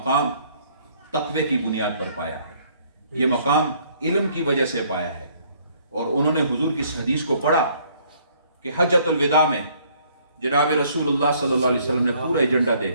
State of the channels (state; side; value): inverted; both; correlation -0.63